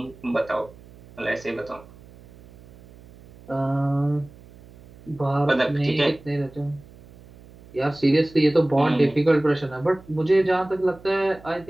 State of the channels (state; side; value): noise; right; hum, 22 dB below the sound